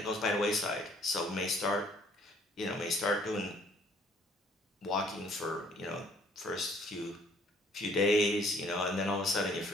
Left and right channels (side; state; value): both; normal; correlation 0.60